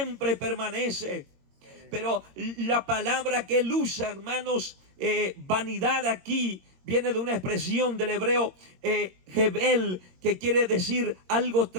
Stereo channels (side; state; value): left; late; 22 ms